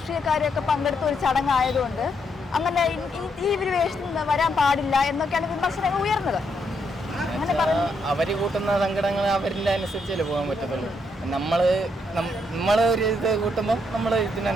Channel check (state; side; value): normal; both; correlation 0.76